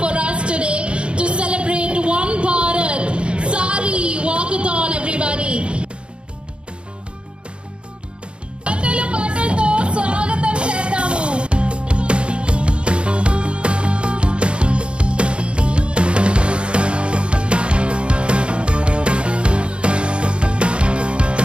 for us today to celebrate One Bharat Sari Walkathon, everybody. పాటలతో స్వాగతం చేద్దాము.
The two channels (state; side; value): late; left; 0.057 ms